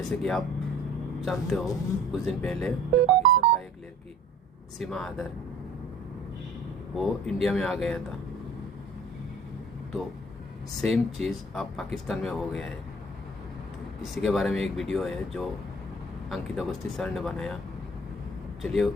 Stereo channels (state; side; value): normal; both; correlation 0.49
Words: कि आप जानते हो, कुछ दिन पहले पाकिस्तान का एक लड़की सीमा आदर वो इंडिया में आ गया था। तो सेम चीज़ अब पाकिस्तान में हो गया है। तो इसी के बारे में एक वीडियो है जो अंकित अवस्थी सर ने बनाया। चलिए